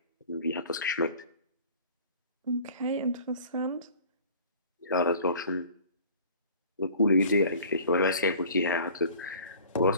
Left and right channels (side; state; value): both; inverted; correlation -0.47